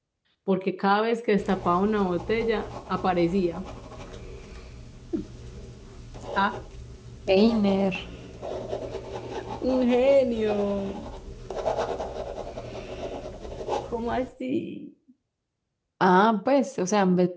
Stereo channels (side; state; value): both; identical; correlation 1.00